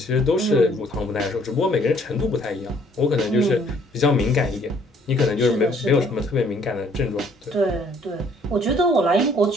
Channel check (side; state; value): both; normal; correlation 0.62